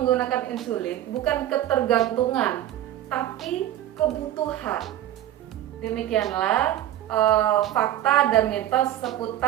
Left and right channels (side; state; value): left; quieter; 12.7 dB